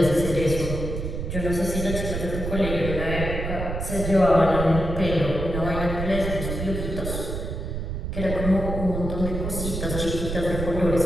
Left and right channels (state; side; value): noise; right; rumble, 4 dB below the sound